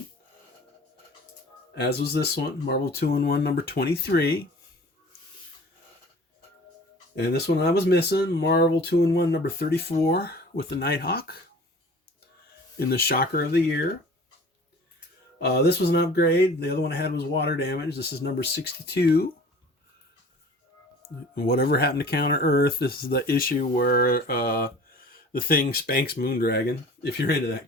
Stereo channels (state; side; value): normal; both; correlation 0.45